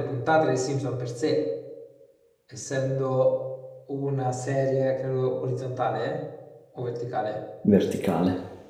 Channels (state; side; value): identical; both; correlation 1.00